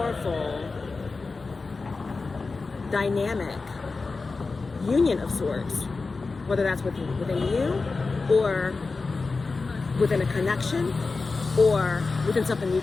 dynamic union of sorts, whether that's within you or within a connection or within something you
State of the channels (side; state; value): right; quieter; 4.0 dB